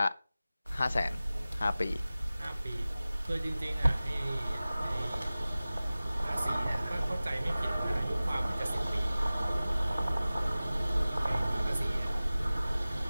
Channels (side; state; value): both; inverted; correlation -0.97